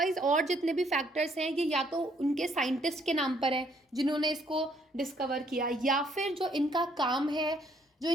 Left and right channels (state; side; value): normal; both; correlation 0.67